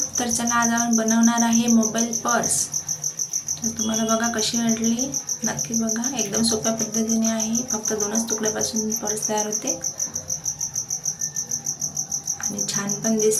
तर चला आज आपण बनवणार आहे मोबाईल पर्स। तर तुम्हाला बघा कशी वाटली, नक्की बघा। एकदम सोप्या पद्धतीने आहे, फक्त 2च तुकड्यापासून पर्स तयार होते आणि छान पण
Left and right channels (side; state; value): both; identical; correlation 1.00